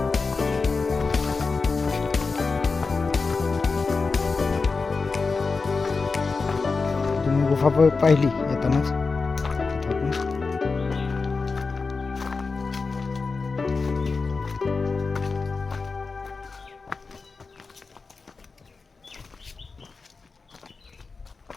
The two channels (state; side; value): quieter; right; 4.3 dB